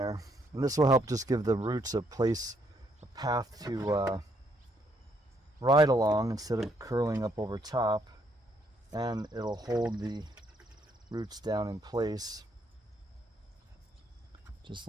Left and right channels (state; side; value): normal; both; correlation 0.71